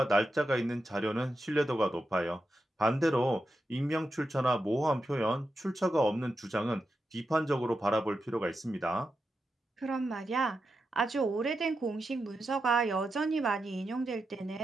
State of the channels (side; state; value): both; normal; correlation 0.88